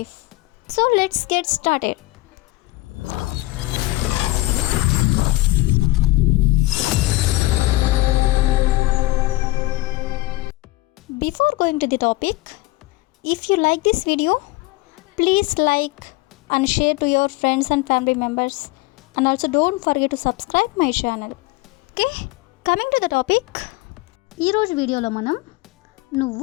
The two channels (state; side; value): quieter; right; 19.6 dB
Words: So let's get started. Before going to the topic, if you like this video, please like and share to your friends and family members, and also don't forget to subscribe my channel. Okay, coming to the topic, ఈ రోజు వీడియోలో మనం